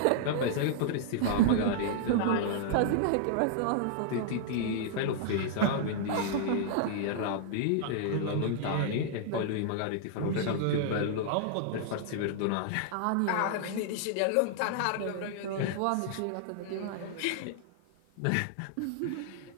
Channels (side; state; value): both; different; correlation -0.01